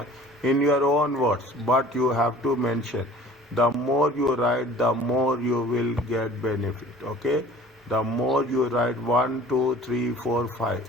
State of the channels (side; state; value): both; normal; correlation 0.48